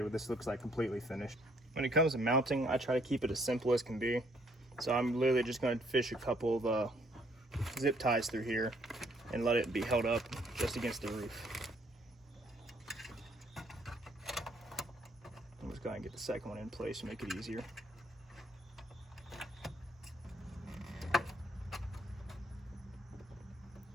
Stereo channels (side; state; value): both; normal; correlation 0.66